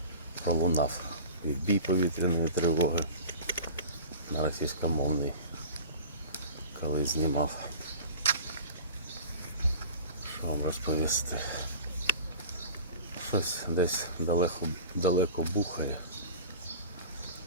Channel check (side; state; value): both; inverted; correlation -0.39